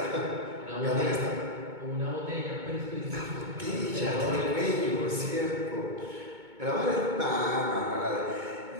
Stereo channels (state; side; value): late; left; 2.2 ms